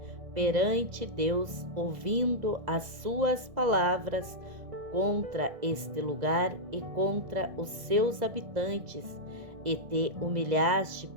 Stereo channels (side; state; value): left; late; 1.6 ms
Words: perante Deus, ouvindo as suas palavras contra este lugar e contra os seus habitantes, e te humilhaste